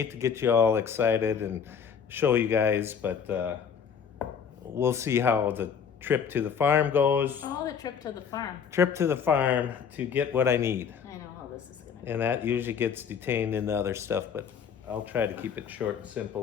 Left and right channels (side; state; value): right; quieter; 7.1 dB